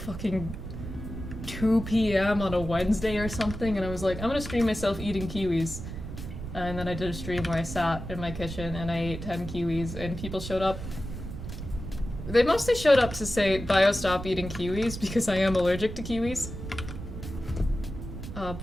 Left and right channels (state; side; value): noise; right; rumble, 8 dB below the sound